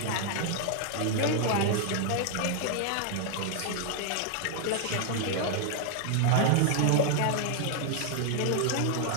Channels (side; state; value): both; different; correlation 0.00